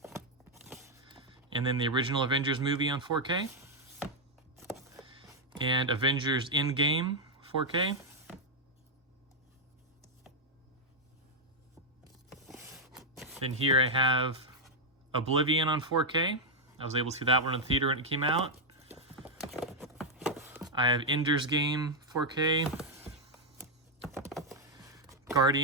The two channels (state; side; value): normal; both; correlation -0.02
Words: And then the original Avengers movie on 4K. And Avengers Endgame 4K. Then here I have Oblivion on 4K. I was able to see that one in the theater when it came out. I have Ender's Game 4K.